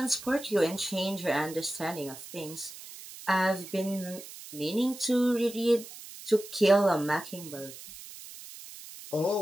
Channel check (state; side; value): noise; right; hiss, 15 dB below the sound